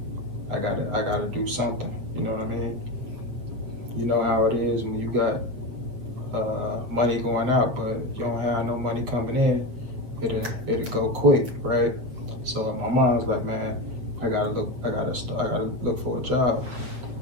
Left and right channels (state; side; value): late; left; 8.2 ms